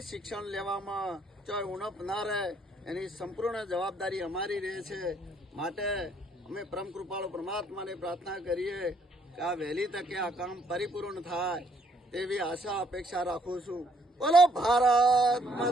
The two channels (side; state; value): both; normal; correlation 0.67